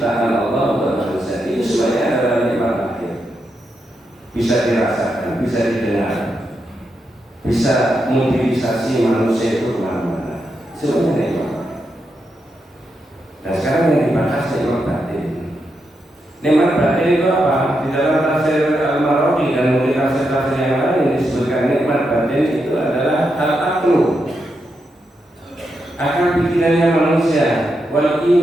Allah buat manusia, itu semuanya adalah nikmat batin. Bisa dirasakan, bisa didengar, bisa mobilisasi manusia itu kemana-mana. Semuanya nikmat. Dan sekarang yang dibahas nikmat batin. Nikmat batin itu apa? Di dalam tafsir Al-Marwazi dan mungkin tafsir-tafsir yang lain disebutkan nikmat batin itu adalah al-aqlu, akal pikirannya manusia, wal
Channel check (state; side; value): normal; both; correlation 0.84